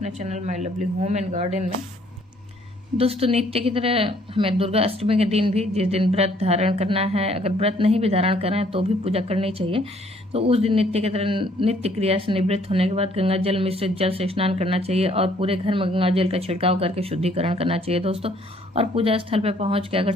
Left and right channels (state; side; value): normal; both; correlation 0.63